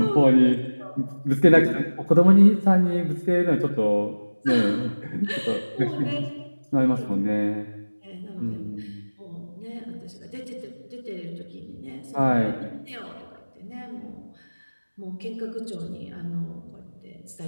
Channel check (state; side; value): inverted; both; correlation -1.00